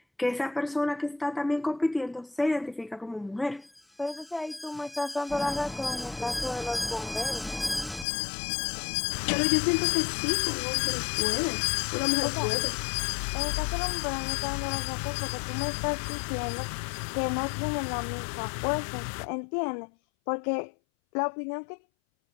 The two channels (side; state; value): right; drops out; at 8.1 s